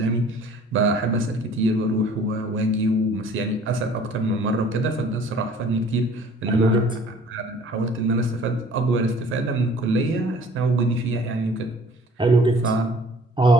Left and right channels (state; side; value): normal; both; correlation 0.52